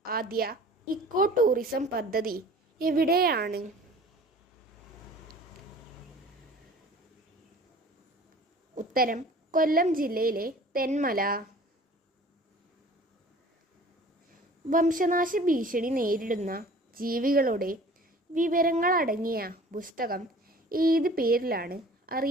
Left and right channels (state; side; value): normal; both; correlation 0.46